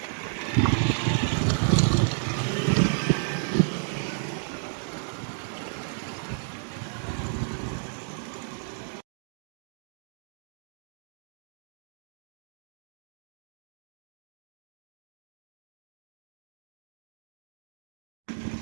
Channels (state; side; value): silent; left; digital silence